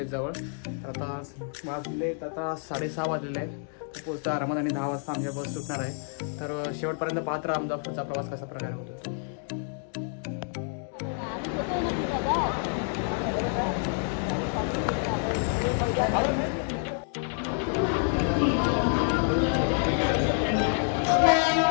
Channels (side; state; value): right; silent; 56 dB below the other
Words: तर आता वाजलेत आता 6:30 वाजलेले आहेत। तर पोहोचता आरामात आणि 10 वाजता आमच्या बस सुटणार आहे। तर शेवटपर्यंत पाहत राहा आमचा पुढचा प्रवास कसा प्रकारे होतो।